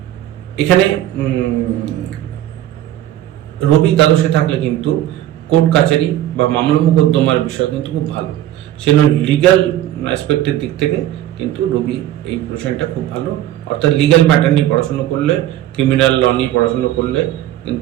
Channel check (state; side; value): quieter; left; 13.1 dB